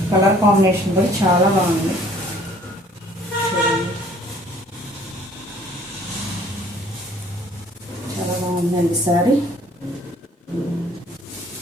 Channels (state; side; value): normal; both; correlation 0.57